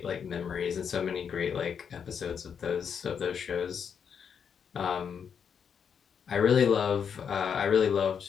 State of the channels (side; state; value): right; quieter; 7.2 dB